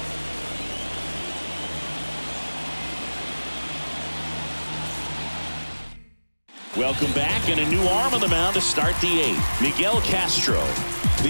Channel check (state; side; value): inverted; both; correlation -1.00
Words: Welcome back, and a new arm on the mound to start the 8th. Miguel Castro.